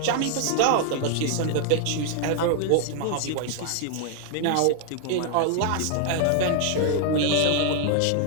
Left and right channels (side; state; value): both; different; correlation 0.00